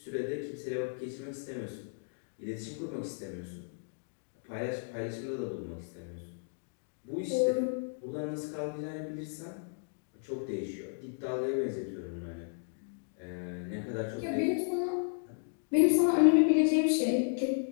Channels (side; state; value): right; silent; digital silence